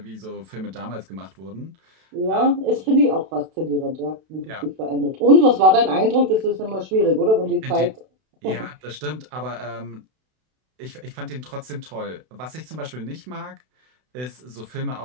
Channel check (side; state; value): left; late; 32 ms